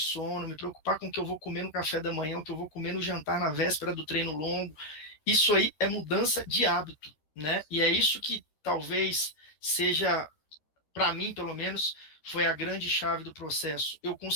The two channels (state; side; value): late; right; 13 ms